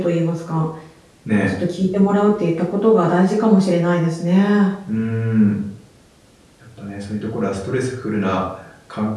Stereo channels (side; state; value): both; identical; correlation 1.00